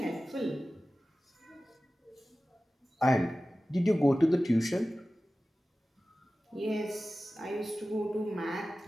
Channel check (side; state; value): both; normal; correlation 0.96